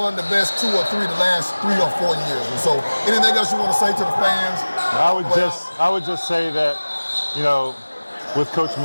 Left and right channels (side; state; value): both; inverted; correlation -1.00